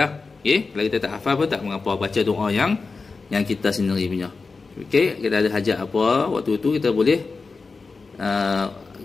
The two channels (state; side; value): quieter; right; 4.3 dB